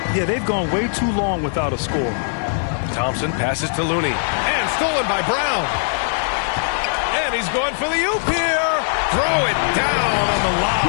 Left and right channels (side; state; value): right; silent; digital silence